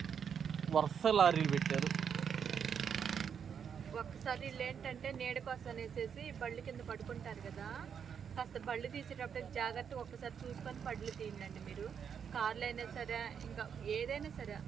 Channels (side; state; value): left; quieter; 7.4 dB